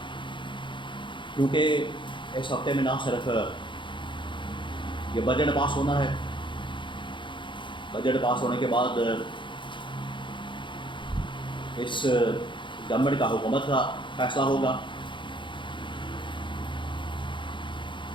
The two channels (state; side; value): late; right; 0.23 ms